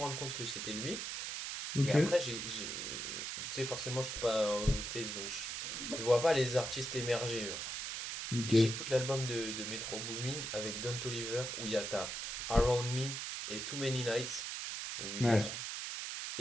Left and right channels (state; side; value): noise; right; hiss, 4 dB below the sound